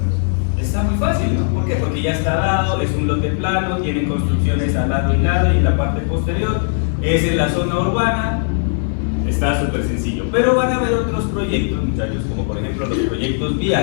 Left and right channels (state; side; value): silent; right; digital silence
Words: Está muy fácil, ¿no? ¿Por qué? Porque ya está dado, es un lote plano, tiene construcciones al lado y lado y en la parte posterior, es en la zona urbana, está súper sencillo. Pero van a haber otros proyectos, muchachos, como por ejemplo los proyectos